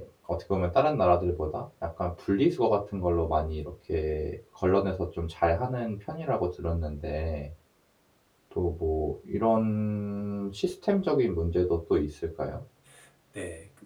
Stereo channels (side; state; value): both; identical; correlation 1.00